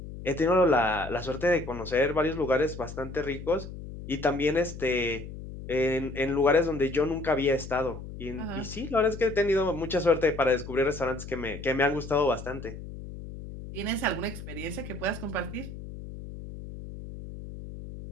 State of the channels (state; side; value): noise; left; hum, 11 dB below the sound